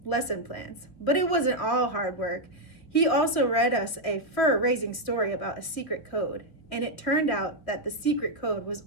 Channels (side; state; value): right; late; 3.1 ms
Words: lesson plans. But it wasn't all hard work. He also read us a fur-raising story about a secret code. And it turned out that the secret code was